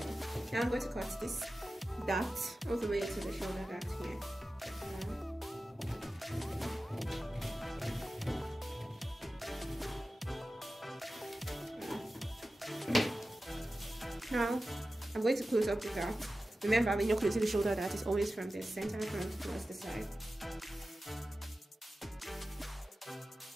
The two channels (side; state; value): both; normal; correlation 0.94